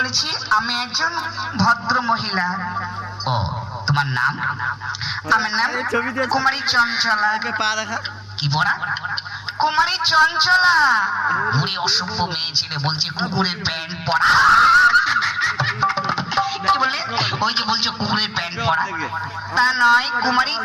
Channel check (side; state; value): both; identical; correlation 1.00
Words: আমি একজন ভদ্র মহিলা। ও তোমার নাম? আমার নাম কুমারী চঞ্চলা। কি পড়া? কুমারী চঞ্চলা। বুড়ি অসভ্য মেয়ে ছেলে বলছে কুকুরের প্যান্ট পরা। কি বললে? ওই যে বলছো কুকুরের প্যান্ট পরা, তা নয়, কুমারী